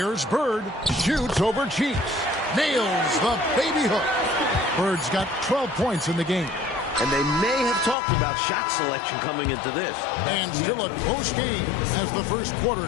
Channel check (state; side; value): drops out; right; at 8.0 s